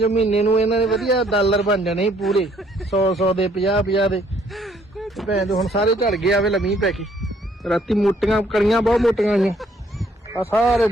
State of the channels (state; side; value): normal; both; correlation 0.65